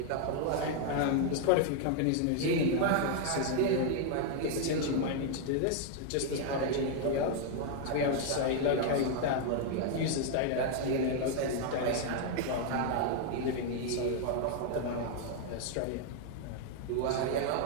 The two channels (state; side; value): different; both; correlation 0.00